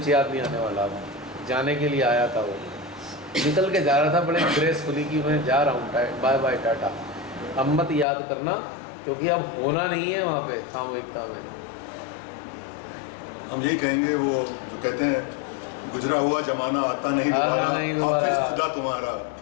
याद नहीं आने वाला। अब जाने के लिए आया था, वो निकल के जा रहा था बड़े ग्रेसफुली कि मैं जा रहा हूँ, बाय बाय टाटा। अब मत याद करना, क्योंकि अब होना नहीं है वहाँ पे सामूहिकता में। हम यही कहेंगे, वो जो कहते हैं गुजरा हुआ जमाना आता नहीं दोबारा, हाफिज खुदा तुम्हारा।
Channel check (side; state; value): right; drops out; at 8.1 s